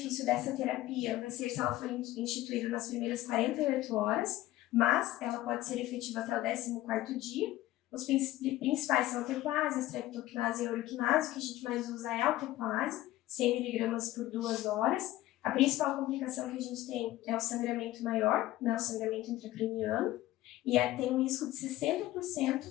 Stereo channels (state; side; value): quieter; right; 15.7 dB